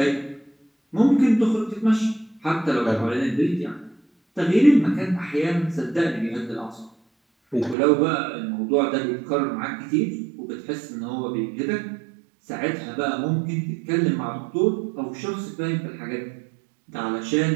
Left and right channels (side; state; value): left; drops out; at 7.8 s